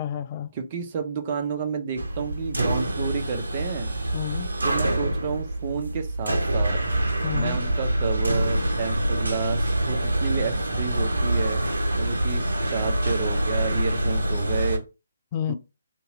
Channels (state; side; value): inverted; both; correlation -0.84